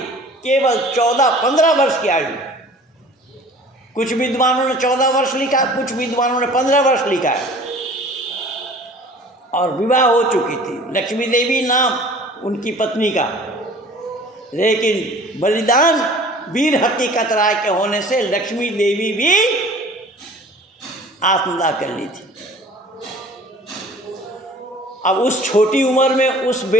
केवल 14-15 वर्ष की आयु, कुछ विद्वानों ने 14 वर्ष लिखा, कुछ विद्वानों ने 15 वर्ष लिखा है, और विवाह हो चुकी थी, लक्ष्मी देवी नाम उनकी पत्नी का, लेकिन बलिदान वीर हकीकत राय के होने से लक्ष्मी देवी भी आत्मदाह कर ली थी। अब उस छोटी उम्र में उस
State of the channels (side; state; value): both; normal; correlation 0.47